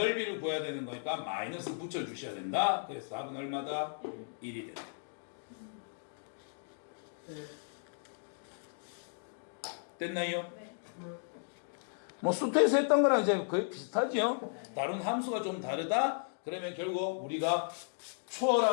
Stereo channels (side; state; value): right; silent; digital silence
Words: 구해야 되는 거니까 마이너스 붙여주셔야 된다. 그래서 답은 얼마다? 1이 된다. 됐나요? 네. 뭐 수트에서 했던 거랑 이제 거의 비슷하죠. 다른 함수가 좀 다르다. 그러면 결국 우리가